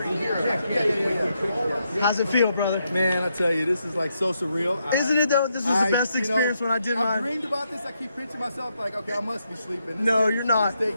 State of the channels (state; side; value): inverted; both; correlation -0.81